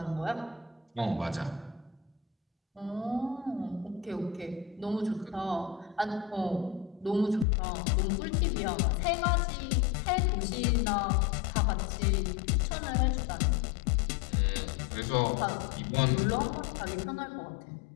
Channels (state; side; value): drops out; right; at 7.5 s